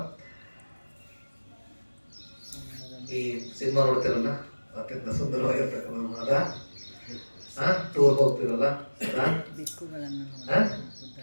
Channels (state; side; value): inverted; both; correlation -1.00